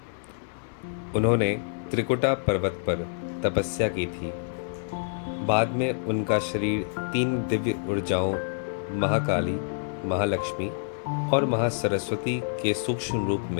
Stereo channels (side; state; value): right; silent; digital silence